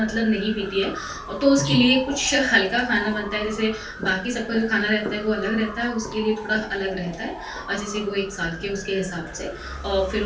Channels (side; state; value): both; identical; correlation 1.00